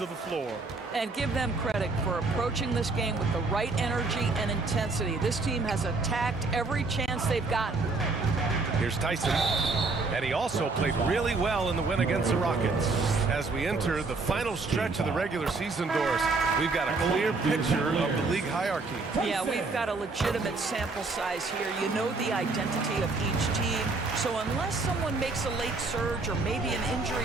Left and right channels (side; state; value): left; quieter; 3.7 dB